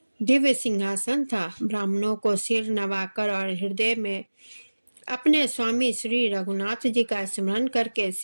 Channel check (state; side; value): inverted; both; correlation -1.00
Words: दिव्य सिंहासन था। ब्राह्मणों को सिर नवाकर और हृदय में अपने स्वामी श्री रघुनाथ जी का स्मरण करके